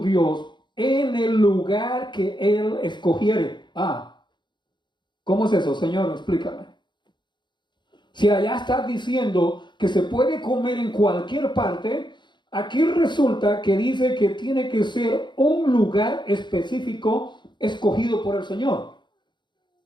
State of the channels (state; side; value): late; right; 0.22 ms